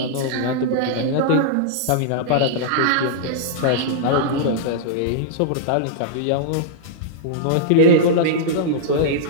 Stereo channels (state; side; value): different; both; correlation -0.02